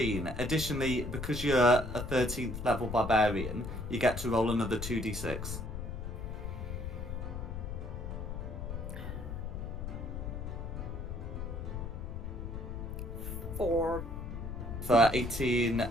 Additionally, because you're a 13th level barbarian, you get to roll another 2d6. Four. For 18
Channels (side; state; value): left; noise; rumble, 6 dB below the sound